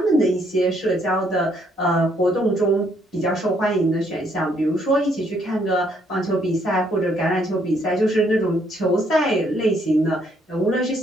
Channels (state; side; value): normal; both; correlation 0.69